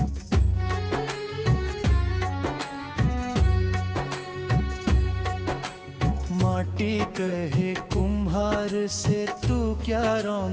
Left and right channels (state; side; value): identical; both; correlation 1.00